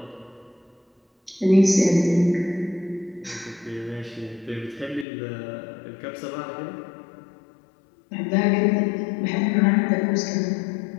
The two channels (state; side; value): drops out; right; at 5.1 s